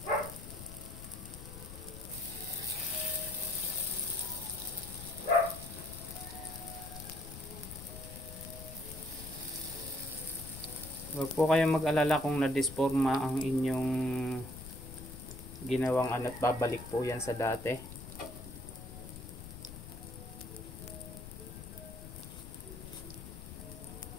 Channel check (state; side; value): noise; left; rumble, 11 dB below the sound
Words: Huwag po kayong mag-alala kung na-disforma ang inyong ginawang at babalik po yan sa dati.